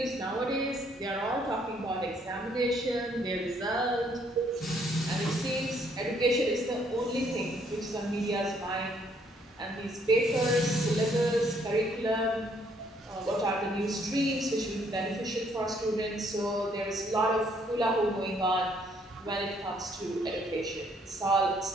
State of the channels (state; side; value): normal; both; correlation 0.67